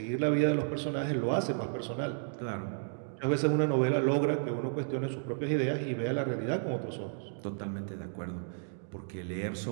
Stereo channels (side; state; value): left; silent; digital silence